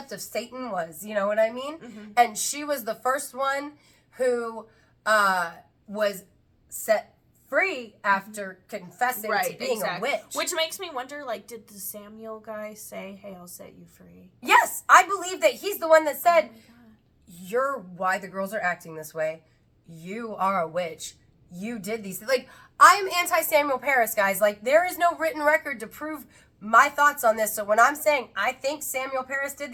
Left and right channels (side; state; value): both; identical; correlation 1.00